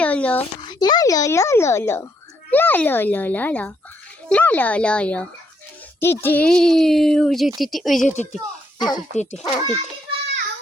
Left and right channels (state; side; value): normal; both; correlation 0.74